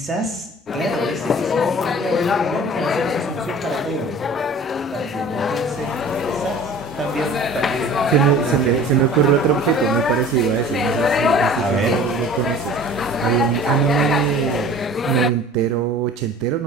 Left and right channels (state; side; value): normal; both; correlation 0.44